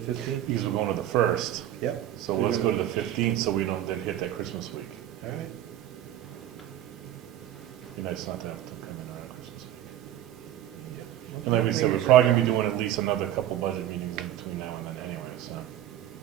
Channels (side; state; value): left; quieter; 12.2 dB